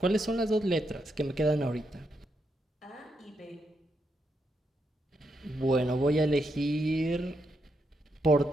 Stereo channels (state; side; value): normal; both; correlation 0.81